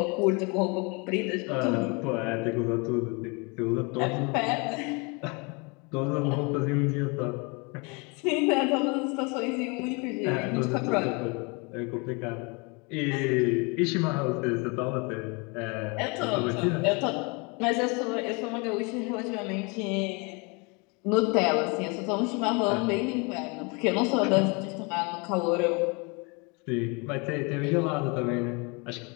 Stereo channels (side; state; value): right; quieter; 30.3 dB